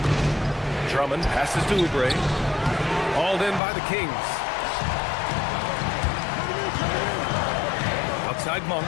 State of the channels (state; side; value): drops out; right; at 3.6 s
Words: Drummond passes to Oubre. Hauled in by the Kings. Outside Monk.